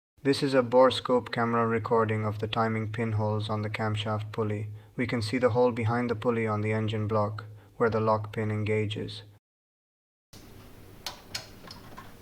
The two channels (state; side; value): identical; both; correlation 1.00